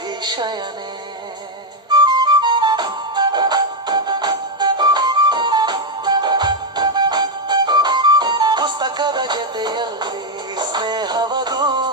ಶಯನೆ. ಪುಸ್ತಕದ ಜೊತೆಯಲ್ಲಿ ಸ್ನೇಹವದು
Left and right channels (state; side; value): normal; both; correlation 0.04